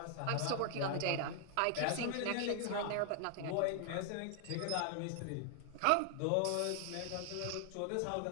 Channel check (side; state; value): both; different; correlation 0.00